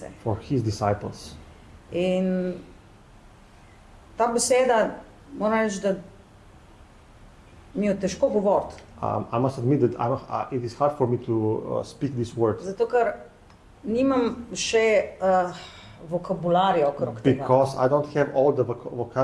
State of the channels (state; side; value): identical; both; correlation 1.00